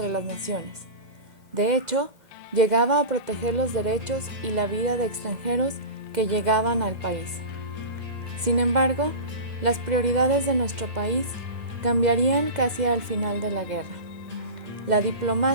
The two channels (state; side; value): late; left; 2.1 ms